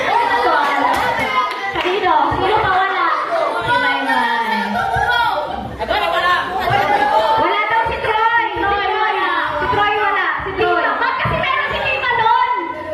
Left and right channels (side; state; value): both; identical; correlation 1.00